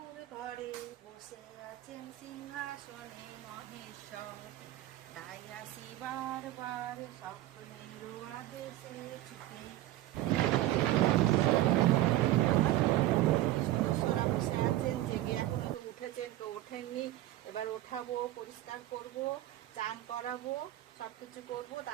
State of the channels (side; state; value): left; quieter; 14.9 dB